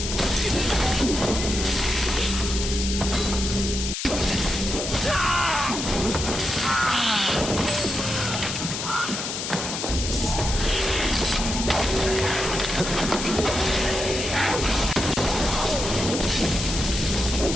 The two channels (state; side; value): noise; left; hiss, 4 dB below the sound